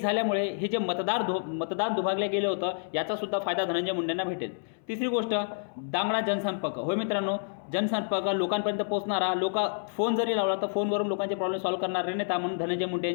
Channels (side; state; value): right; silent; 59 dB below the other